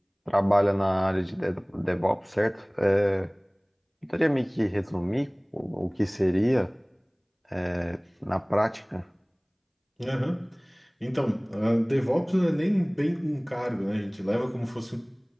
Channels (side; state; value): both; identical; correlation 1.00